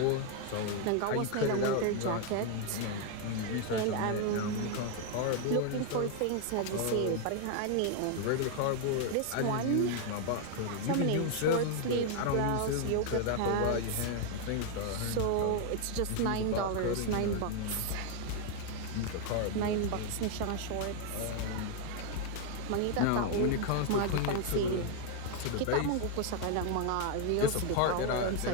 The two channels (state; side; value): different; both; correlation 0.00